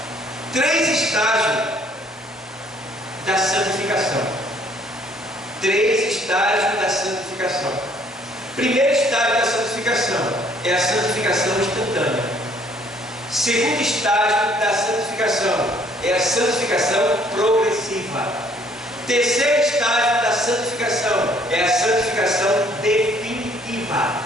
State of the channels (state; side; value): normal; both; correlation 0.61